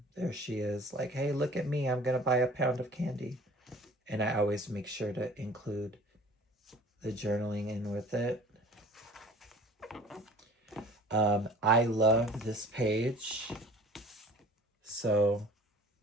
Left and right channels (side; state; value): both; normal; correlation 0.47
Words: There she is, like, hey, look at me, I'm gonna buy a pound of candy. And I always make sure to include the journaling in with it. I love this page. So,